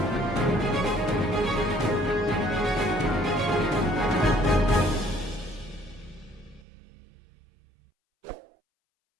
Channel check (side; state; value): left; drops out; at 6.7 s